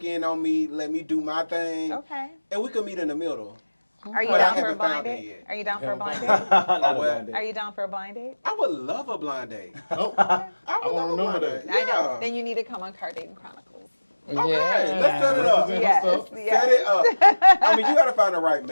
in on me, let me do my thing. Okay. And we could meet in the middle. Are you But I down for a haven't blind found it date? yet. Are you down for a blind date? Not a what? blind date. Are you down for a blind date? I would love a blind date. Oh, I would love a blind date. Yeah. I know. Then you need to come on Car Dating Chronicles. Okay, Yeah. let's set it up. Yes. Set it up. I mean, you gotta find the right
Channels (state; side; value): inverted; both; correlation -1.00